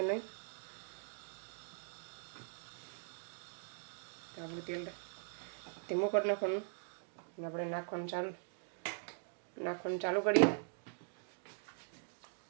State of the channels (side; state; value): left; silent; digital silence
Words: નહીં. તો આપણું તેલ ધીમું કરી નાખવાનું અને આપણે નાખવાનું ચાલુ કરીએ.